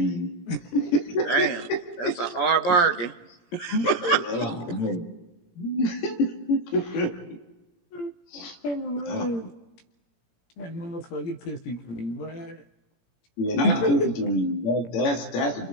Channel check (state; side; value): late; right; 17 ms